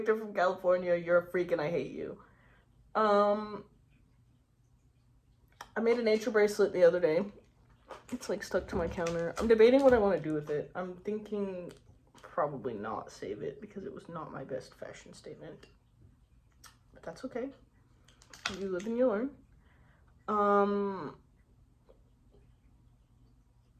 from California, you're a freak and I hate you. I made a nature bracelet the other day. It's like stuck to my counter. I'm debating what I want to do with it. I'm thinking probably not save it because it was not my best fashion statement. But that's okay. You live and you learn.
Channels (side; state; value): both; identical; correlation 1.00